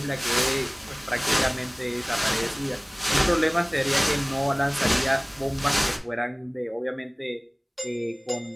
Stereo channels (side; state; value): both; identical; correlation 1.00